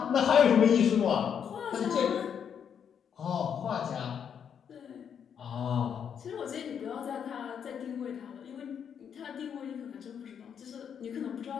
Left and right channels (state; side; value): quieter; right; 7.9 dB